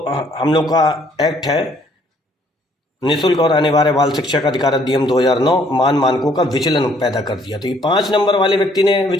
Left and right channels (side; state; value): both; normal; correlation 0.64